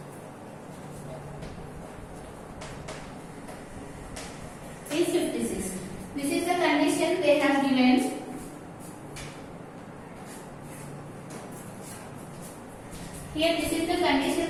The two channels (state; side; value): identical; both; correlation 1.00